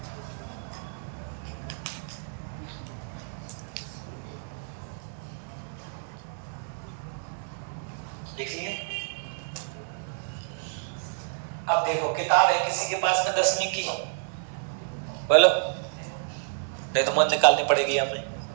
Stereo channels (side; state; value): left; silent; 58 dB below the other